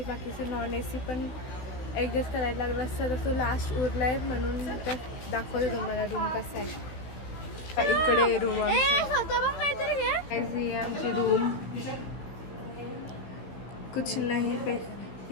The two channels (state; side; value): late; right; 16 ms